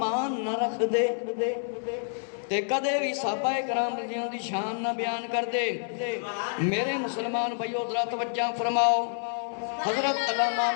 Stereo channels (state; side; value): silent; right; digital silence